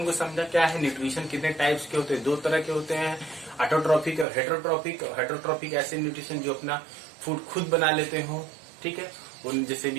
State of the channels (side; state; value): left; drops out; at 4.2 s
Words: को समझा, क्या है न्यूट्रिशन, कितने टाइप्स के होते हैं, दो तरह के होते हैं, ऑटोट्रॉपिक और हेटरोट्रॉपिक। हेटरोट्रॉपिक ऐसे न्यूट्रिशन जो अपना फूड खुद बना लेते हो, ठीक है, उन जैसे भी